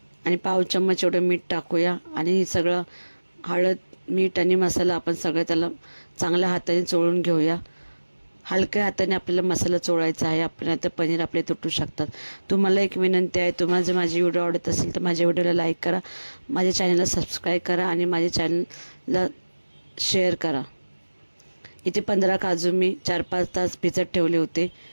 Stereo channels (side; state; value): both; inverted; correlation -1.00